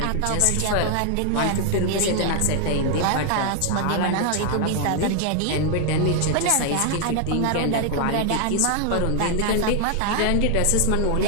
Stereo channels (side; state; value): both; different; correlation 0.00